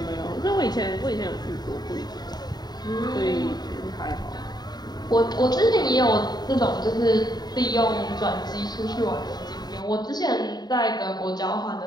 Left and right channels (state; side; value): late; right; 0.20 ms